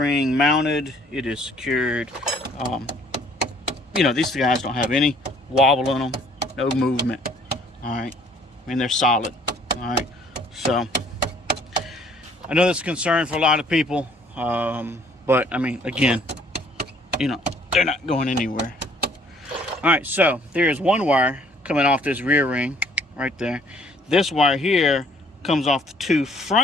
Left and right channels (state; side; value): normal; both; correlation 0.60